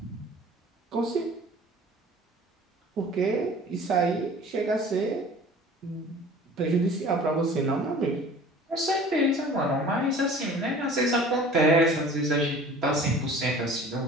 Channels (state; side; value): normal; both; correlation 0.45